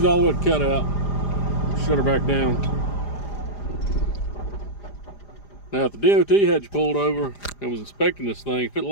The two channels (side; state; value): right; late; 4.9 ms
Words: all the way to cut out. Shut her back down. Now, if the DOT had you pulled over and was inspecting this thing, if it